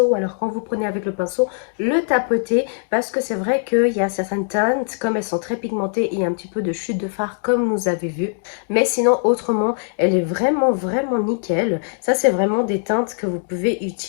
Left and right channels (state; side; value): silent; right; digital silence